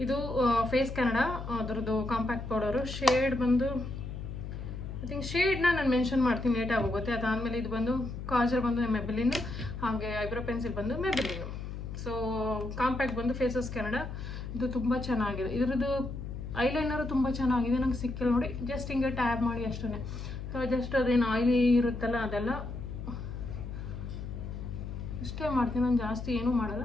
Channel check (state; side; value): noise; left; hum, 7 dB below the sound